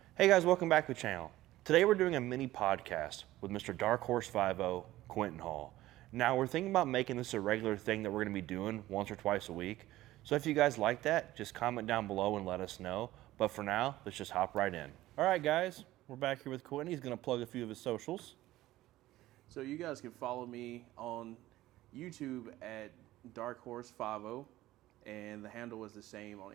Hey guys, welcome back to the channel. Today we're doing a mini podcast with Mr. Dark Horse 50, Quenton Hall. Now we're thinking about making this a regular thing that we're going to be doing once or twice a week. So if you guys like that, just comment down below and let us know. But for now, let's just hop right in. All right guys, we're back here with Quenton. He's going to plug a few of his socials. So you guys can follow me on YouTube at Dark Horse 50, and the handle is the same on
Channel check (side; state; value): left; quieter; 15.9 dB